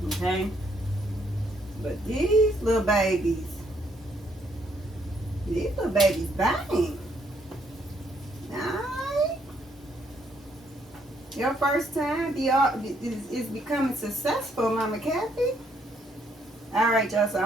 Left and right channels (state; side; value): normal; both; correlation 0.71